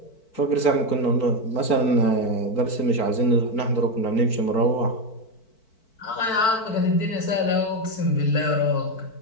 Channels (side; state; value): right; late; 4.5 ms